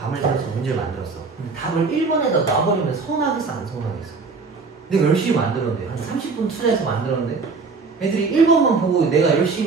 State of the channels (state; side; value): quieter; left; 4.4 dB